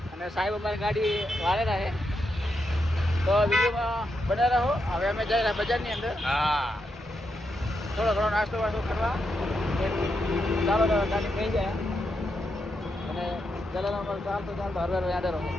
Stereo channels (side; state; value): both; normal; correlation 0.83